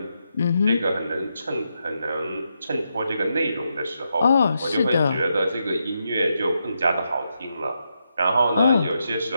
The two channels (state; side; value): inverted; both; correlation -0.83